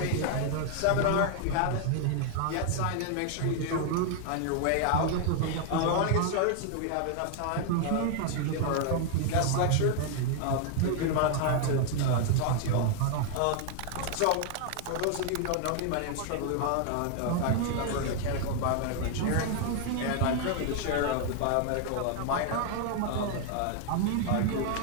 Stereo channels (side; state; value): both; different; correlation 0.00